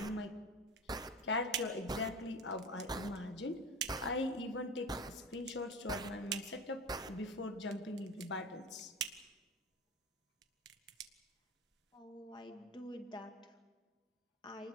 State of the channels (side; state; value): both; normal; correlation 0.30